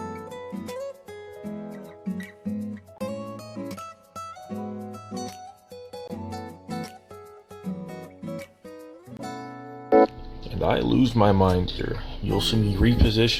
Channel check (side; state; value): both; identical; correlation 1.00